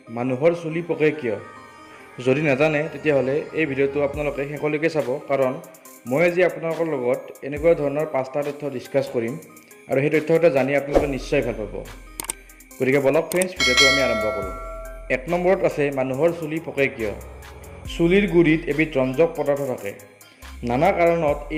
মানুহৰ চুলি পকে কিয়? যদি নাজানে তেতিয়াহ'লে এই ভিডিঅ'টো আপোনালোকে শেষলৈকে চাব, কাৰণ মই আজি আপোনালোকৰ লগত এনেকুৱা ধৰণৰ 5টা তথ্য ডিছকাছ কৰিম আৰু সেই তথ্যকেইটা জানি আপোনালোকে নিশ্চয় ভাল পাব। গতিকে বলক ফ্ৰেণ্ডছ, ভিডিঅ'টো আমি আৰম্ভ কৰোঁ। 1 নম্বৰত আছে মানুহৰ চুলি পকে কিয়? চুলিৰ গুৰিত এবিধ ৰঞ্জক পদাৰ্থ থাকে। নানা কাৰণত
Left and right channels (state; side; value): identical; both; correlation 1.00